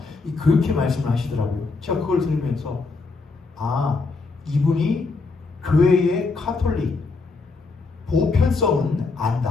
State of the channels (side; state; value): right; quieter; 3.9 dB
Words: 그렇게 말씀을 하시더라고요. 제가 그걸 들으면서 이분이 교회의 카톨릭 보편성은